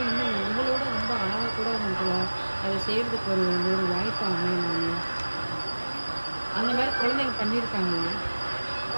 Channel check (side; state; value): both; inverted; correlation -1.00